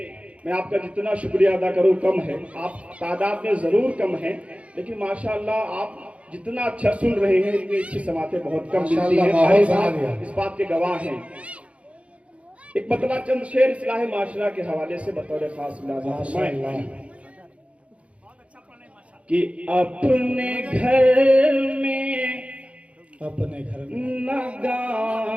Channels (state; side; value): late; left; 0.063 ms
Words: मैं आपका जितना शुक्रिया अदा करूं कम है। आप तादाद में जरूर कम हैं, लेकिन माशाअल्लाह आप जितना अच्छा सुन रहे हैं इतनी अच्छी समातें बहुत कम मिलती माशाअल्लाह, हैं। माहौल भाई बना साहब दिया। इस बात के गवाह हैं। एक मतलब चंद शेर इस्लाह माशरा के हवाले से बतौर खास मुलाजा फरमाए माशाअल्लाह। बहुत अच्छा पढ़े माशाल्लाह। कि अपने घर में अपने घर में न